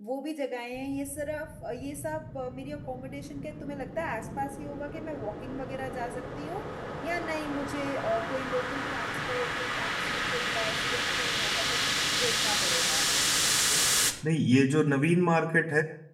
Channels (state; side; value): identical; both; correlation 1.00